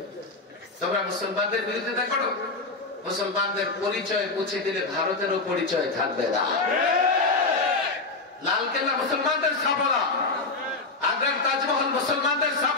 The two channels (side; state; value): right; quieter; 3.5 dB